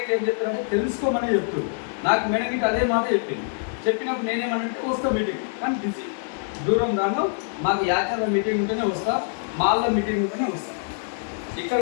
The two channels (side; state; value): right; silent; digital silence